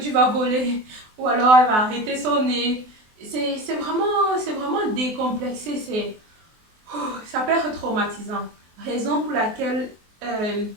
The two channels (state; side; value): late; left; 24 ms